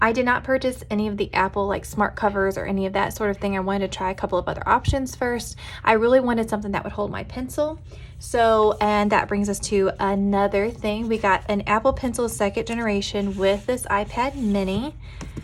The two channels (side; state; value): both; identical; correlation 1.00